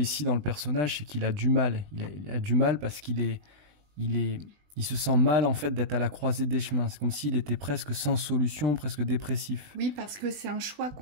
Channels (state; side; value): late; left; 20 ms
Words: dans le personnage, c'est qu'il a du mal. Il a du mal parce il se sent mal en fait d'être à la croisée des chemins. C'est comme s'il était presque sans solution, presque dépressif. Oui, parce que c'est un choix